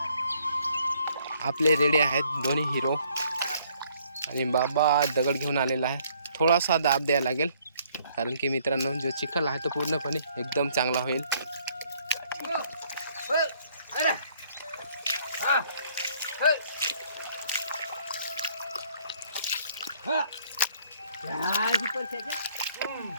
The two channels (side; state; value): both; inverted; correlation -0.64